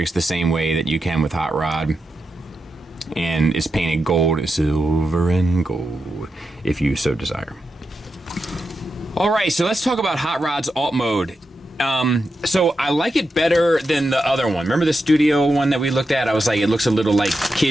the same way that you can with Hot Rod, and it's painted gold, silver and gold, if you so desire. All right, so let's talk about Hot Rod's alt mode. So I like it better than the other one. Remember the studio one that we looked at? I was like, it looks a little like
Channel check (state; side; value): normal; both; correlation 0.88